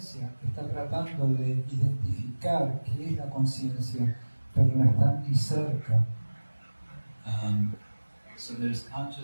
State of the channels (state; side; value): inverted; both; correlation -1.00